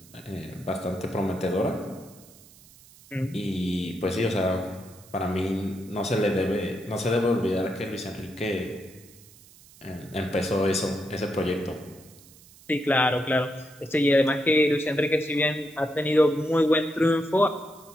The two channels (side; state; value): right; noise; hiss, 24 dB below the sound